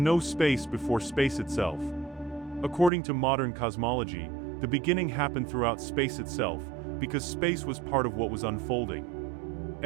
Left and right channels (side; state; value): left; drops out; at 2.9 s